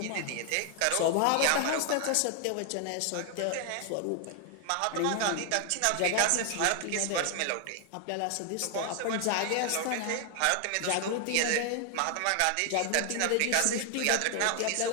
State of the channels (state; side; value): different; both; correlation 0.00